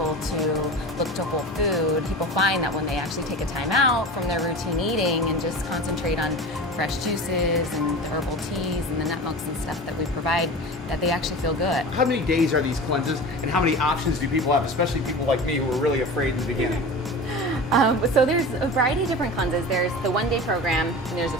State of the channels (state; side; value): normal; both; correlation 0.32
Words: to look to whole food. People find that when they actually take a time out from their routine eating and just concentrate on fresh juices and the herbal teas and the nut milks and stuff that we provide, that they actually feel good. How many days are these cleanses, and how many options do people have, especially people like me who are really afraid in the beginning? So there's a variety of different cleanses. There's the 1-day program, and there's a